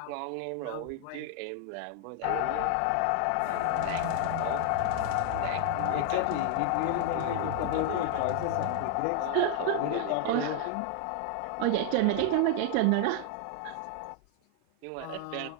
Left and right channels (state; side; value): different; both; correlation 0.00